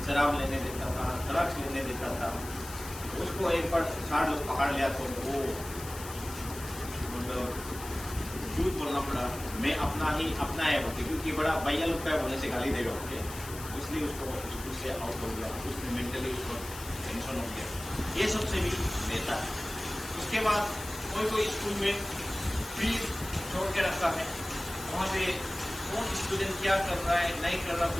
शराब लेने देता था, ड्रग्स लेने देता था। उसको एक बार 4 लोग पकड़ लिया तो वो मतलब झूठ बोलना पड़ा, मैं अपना है बोलते, क्योंकि बड़ा भैया लोग का बोलने से गाली देगा। ओके, इसलिए उसको स्कूल से आउट हो गया, उसमें मेंटली उसको टेंशन हो गया, ये सबसे भी लेता है। उसके बाद कोई स्कूल में फीस छोड़ के रखता है, वहाँ पे कौन स्टूडेंट क्या कर रहा है नहीं कर रहा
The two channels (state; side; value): noise; left; hiss, 12 dB below the sound